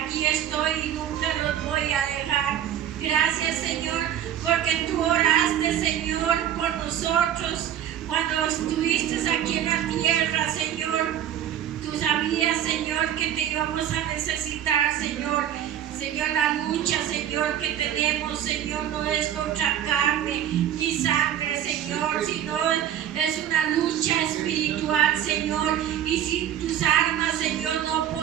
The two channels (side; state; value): left; quieter; 10.5 dB